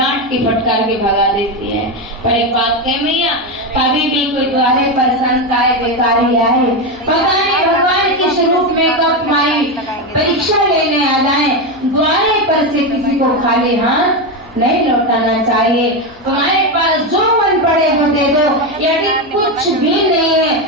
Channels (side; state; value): left; noise; hum, 26 dB below the sound